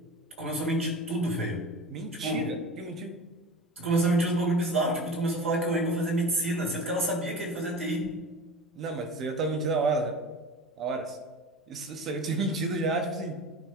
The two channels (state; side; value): normal; both; correlation 0.35